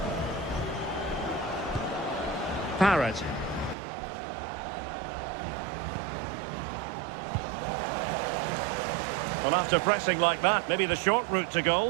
Parrott. Well, after pressing like that, maybe the short route to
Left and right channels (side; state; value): left; drops out; at 3.8 s